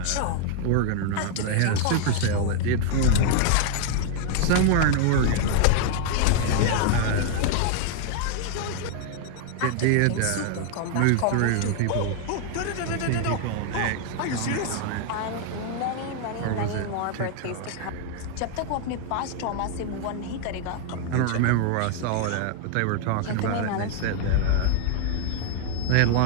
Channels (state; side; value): different; both; correlation 0.00